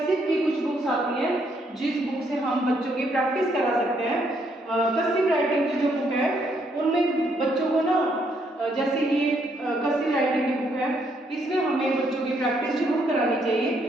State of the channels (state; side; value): normal; both; correlation 0.72